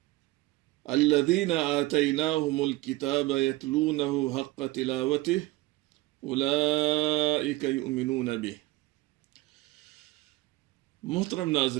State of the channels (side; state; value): left; quieter; 19.5 dB